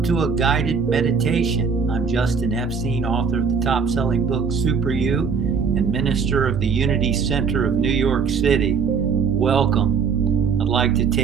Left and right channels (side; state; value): left; quieter; 5.8 dB